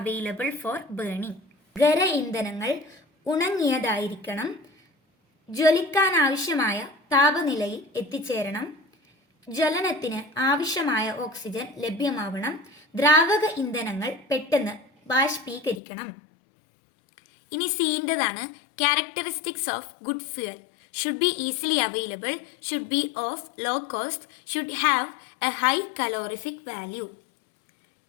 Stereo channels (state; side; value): drops out; right; at 15.8 s